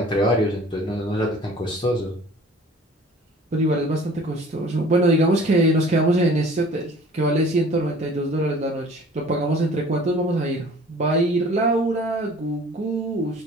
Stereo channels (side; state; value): both; normal; correlation 0.48